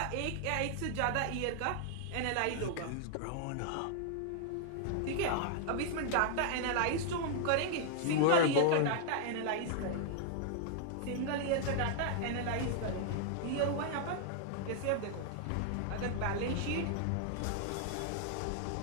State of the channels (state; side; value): different; both; correlation -0.01